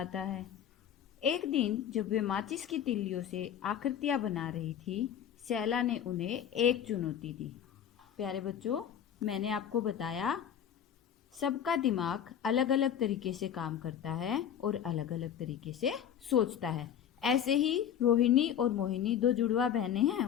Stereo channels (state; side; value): quieter; right; 9.3 dB